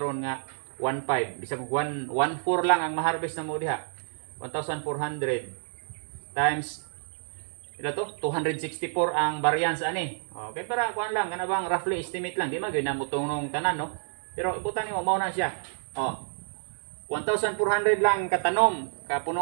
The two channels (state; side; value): silent; left; digital silence